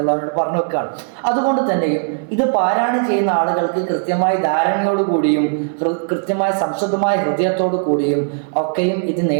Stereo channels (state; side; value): silent; left; digital silence